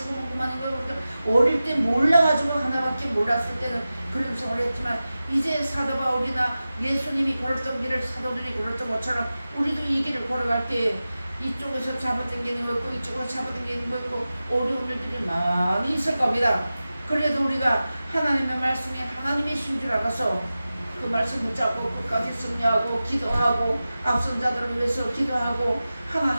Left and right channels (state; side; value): inverted; both; correlation -0.95